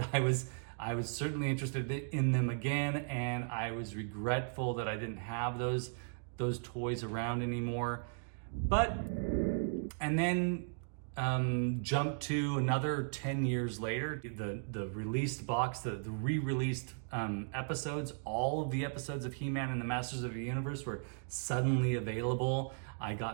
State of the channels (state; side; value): silent; left; digital silence